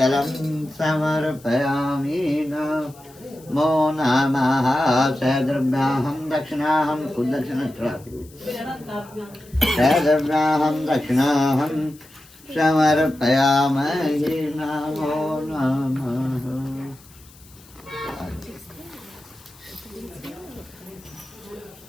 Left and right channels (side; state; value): left; noise; hiss, 25 dB below the sound